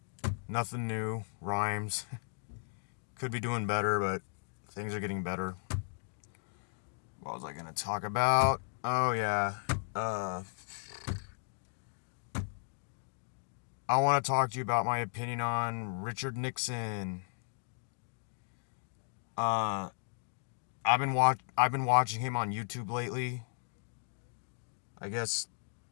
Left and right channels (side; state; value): right; silent; digital silence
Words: Nothing new. Rhymes. Could be doing better, but things are getting better. What was I gonna talk about? Oh yeah. Uh I want to talk to you about my opinion on Richard Nixon. Uh I've been watching him on YouTube lately. I guess